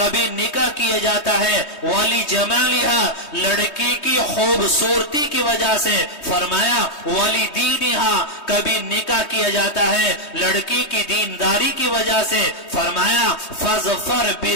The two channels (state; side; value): late; right; 3.2 ms